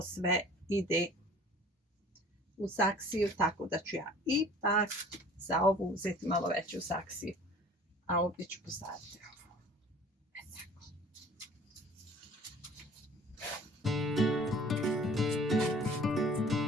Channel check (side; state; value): both; normal; correlation 0.48